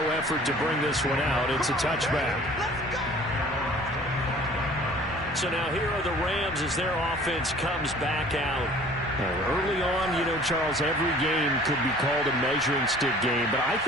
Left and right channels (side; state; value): both; normal; correlation 0.49